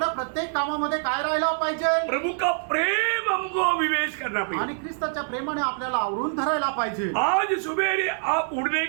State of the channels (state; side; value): silent; left; 59 dB below the other